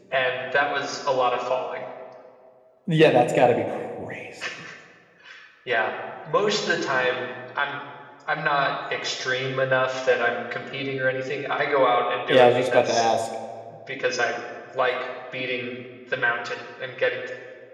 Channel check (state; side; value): identical; both; correlation 1.00